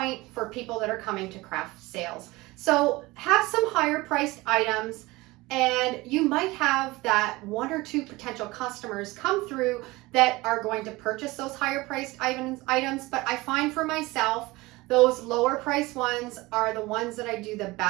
for people that are coming to craft sales. So have some higher priced items, and you might have that one or two potential customers come through that are going to purchase those higher priced items. But I find for myself, those lower priced ones are the ones that I do the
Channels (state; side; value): quieter; left; 21.3 dB